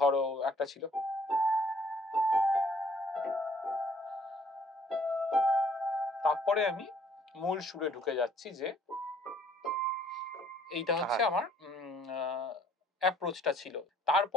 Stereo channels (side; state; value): both; normal; correlation 0.60